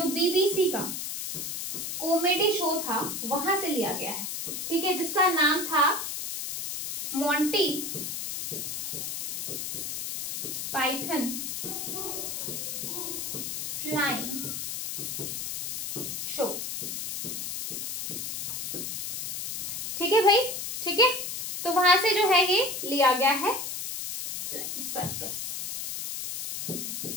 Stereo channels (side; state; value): left; noise; hiss, 4 dB below the sound